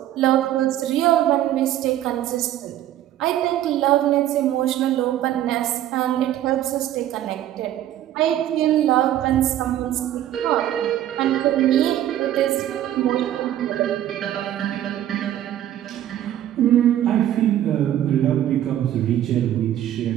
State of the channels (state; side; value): quieter; left; 12.2 dB